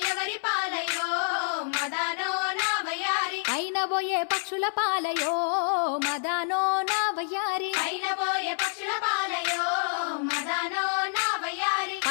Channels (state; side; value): silent; right; 60 dB below the other